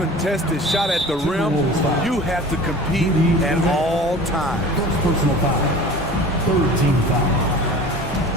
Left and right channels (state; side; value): normal; both; correlation 0.40